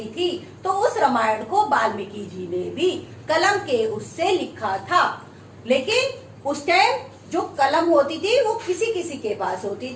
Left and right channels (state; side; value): identical; both; correlation 1.00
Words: थी तो उस रामायण को वाल्मीकि जी ने भी कलम के उससे लिखा था, लेकिन उस टाइम जो कलम होती थी वो किसी किसी के पास होती